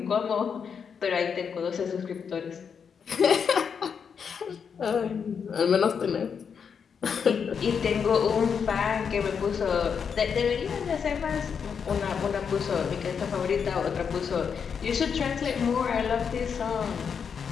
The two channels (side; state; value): right; quieter; 6.7 dB